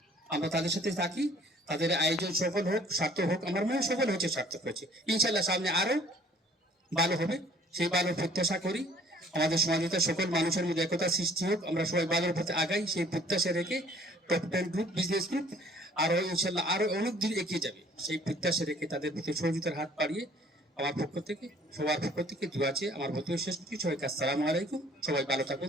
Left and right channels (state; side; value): normal; both; correlation 0.56